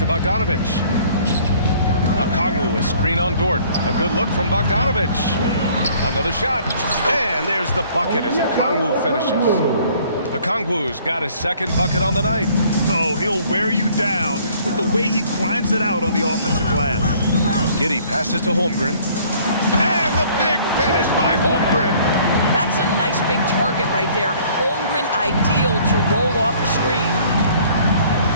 Bogdanovich. Okongwu, a screen on Dort. A good look from Bogdanovich. Another shot. And there's the bucket as Okongwu finishes. Okongwu's got his second bucket on the night. So he'll wear you down with the way he grinds it out on the offensive glass. Giddey passes to Holmgren. And the big finish by Holmgren. That's a nice big target right there. Holmgren ideal to roll off the screen.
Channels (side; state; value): both; inverted; correlation -0.57